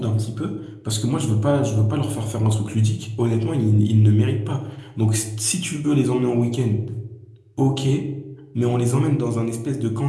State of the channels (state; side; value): identical; both; correlation 1.00